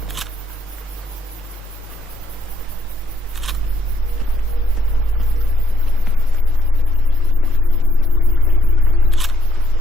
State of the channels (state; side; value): normal; both; correlation 0.68